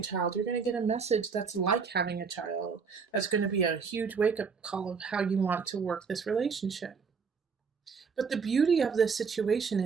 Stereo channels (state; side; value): quieter; left; 5.5 dB